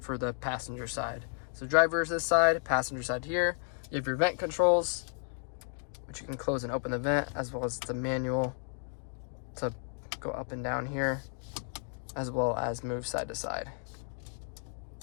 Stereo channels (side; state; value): right; silent; 56 dB below the other